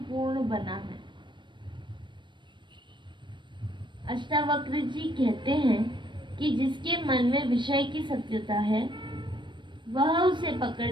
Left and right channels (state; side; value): late; left; 0.23 ms